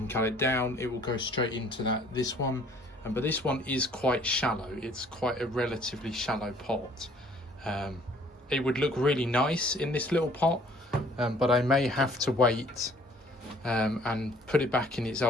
cut it down, it will go straight into this one. But this one is quite shallow. It's quite a relatively shallow pot. It would look really nice in this little pot, but I may have to wait and put it back in its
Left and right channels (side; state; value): both; normal; correlation 0.58